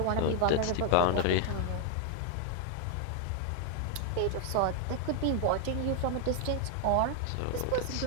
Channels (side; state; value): both; different; correlation 0.01